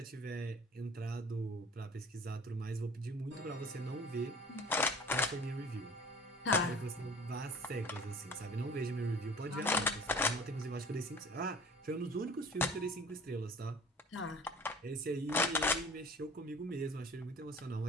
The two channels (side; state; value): both; normal; correlation 0.46